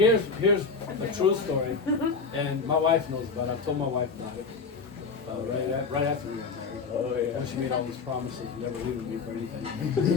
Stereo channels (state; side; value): quieter; right; 4.8 dB